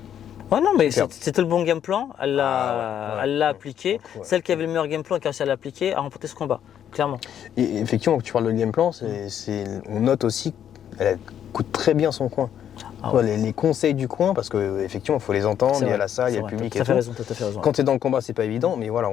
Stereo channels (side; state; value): right; quieter; 9.7 dB